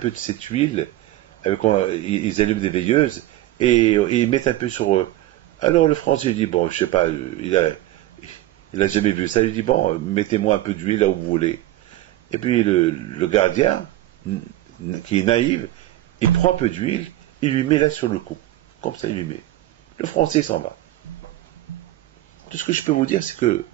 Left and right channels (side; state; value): left; quieter; 15.3 dB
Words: de cette huile, ils allument des veilleuses, et ils mettent un peu sur eux. Alors le Français dit, bon, je sais pas, il a jamais vu ça, il dit, bon, mettez-moi un peu d'huile là où vous voulez. Et puis le gardien, qui est naïf, il prend un peu d'huile, il lui met là sur le cou. Comme ça, il lui met. Le Français s'en va. Tout ce que je peux vous dire, c'est que